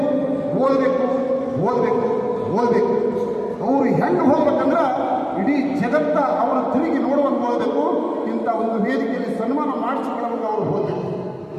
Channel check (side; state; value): both; identical; correlation 1.00